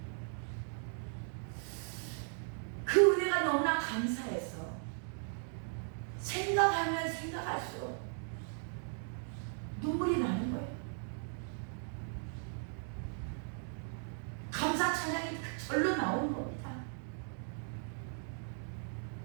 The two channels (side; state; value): left; silent; 53 dB below the other